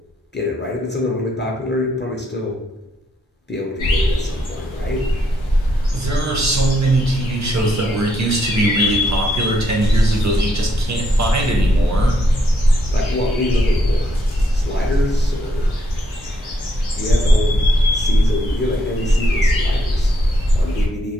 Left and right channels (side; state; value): both; normal; correlation 0.75